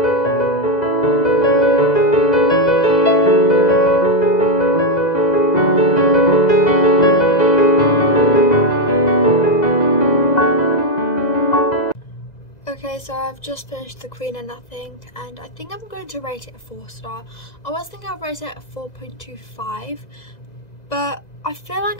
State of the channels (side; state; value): right; late; 2.0 ms